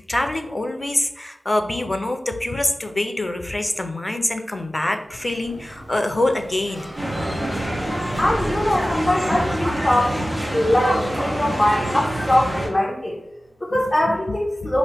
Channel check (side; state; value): both; normal; correlation 0.96